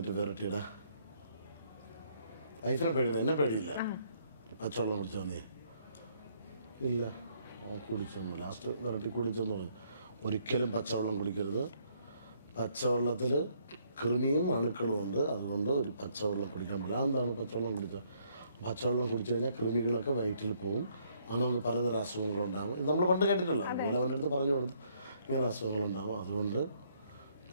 വിരട്ടിയിടാ, വൈഫിനെ പേടിയില്ല, എന്നെ പേടിയില്ല. പച്ചവെള്ളം കുടിച്ചോ നീ? ഇല്ല കുടിച്ചൊന്നു. ലാസ്റ്റ് വിരട്ടി കുടിച്ചെന്ന് പറഞ്ഞു. ഒരിക്കലും പച്ചവെള്ളം കുടിക്കരുത്, പച്ചവെള്ളത്തിൽ കൃമിയും അണുക്കളും ഉണ്ട്, അതുകൊണ്ട് ഒരു പച്ചവെള്ളം കുടിക്കാൻ പറ്റില്ല. അതെന്താണ് പച്ചവെള്ളം കുടിച്ചാൽ? പച്ചവെള്ളം കുടിച്ചു കഴിഞ്ഞാൽ കൃമികളൊക്കെ വയറ്റിൽ പോകും, അങ്ങനെ നമുക്ക് പലതരം അസുഖങ്ങളുണ്ടാകും. ഇത് നമ്മൾ പണ്ട് കേട്ടിട്ടുള്ളൂ. അതുപോലെ അവൻ്റെ അടുത്ത് പറഞ്ഞു കൊടുത്ത് ഇങ്ങനെ അസുഖങ്ങളുണ്ടാകും, അതുകൊണ്ട്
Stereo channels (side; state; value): both; inverted; correlation -0.68